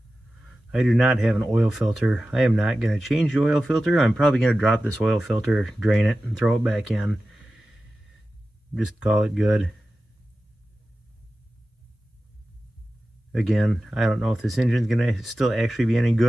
I do not have an oil filter. I am not going to change the oil filter. I'm probably going to drop this oil filter, drain it, and throw it back in. Just call it good. Again, I don't know if this engine's going to still actually be any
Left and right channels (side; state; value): both; normal; correlation 0.94